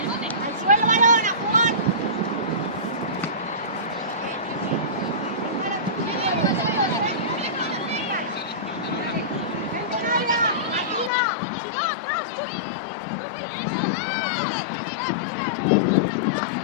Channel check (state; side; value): drops out; right; at 11.1 s